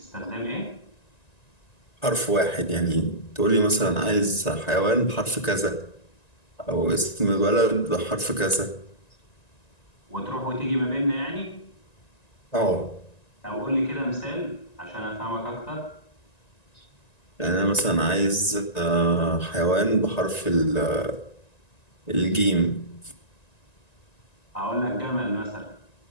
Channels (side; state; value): right; late; 1.9 ms